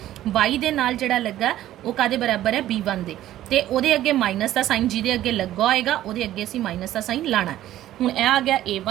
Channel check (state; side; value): quieter; left; 13.5 dB